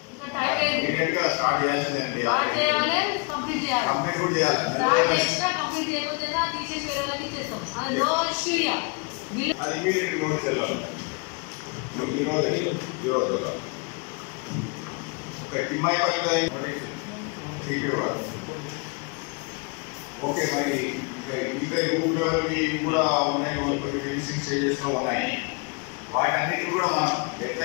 ఓకే, మరి ఇంకా రూట్ లెవెల్కి కూడా ఉన్నాయి, కొన్ని ఫినిషింగ్ స్టేజెస్లో ఉన్నాయి. వాటన్నిటిని కూడా మనం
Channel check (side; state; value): right; quieter; 32.2 dB